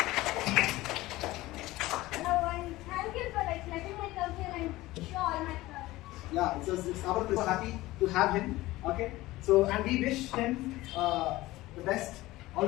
Thank you for letting me come here and show all my projects. Yeah, it's our pleasure. So happy to have him. Okay. So and we wish him the best, all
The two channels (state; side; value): quieter; right; 18.2 dB